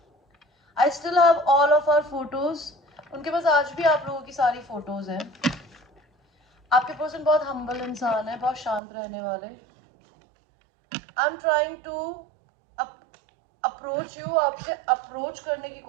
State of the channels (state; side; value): drops out; left; at 8.8 s